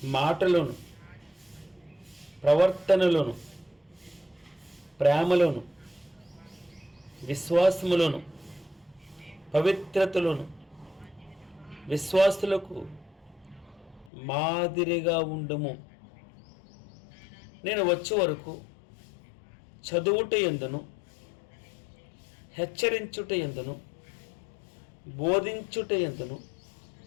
మాటలను, ప్రవర్తనలను, ప్రేమలను, విశ్వాసములను, పవిత్రతలను విశ్వాసులకు మాదిరిగా ఉండుము. నేను వచ్చే వరకు చదువుట యందును, హెచ్చరించుట యందును, బోధించుట యందును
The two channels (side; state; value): right; drops out; at 14.1 s